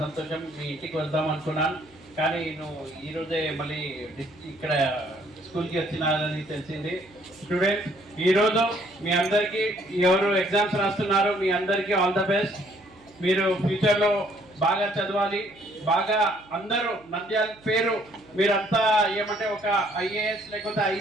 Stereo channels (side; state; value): right; noise; hum, 27 dB below the sound